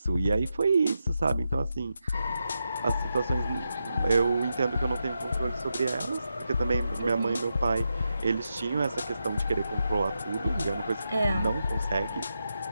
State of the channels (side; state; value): both; inverted; correlation -0.86